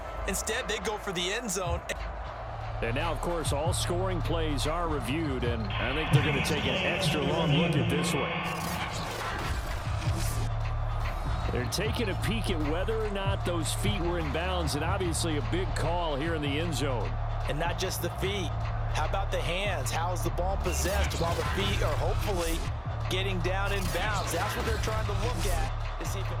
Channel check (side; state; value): both; identical; correlation 1.00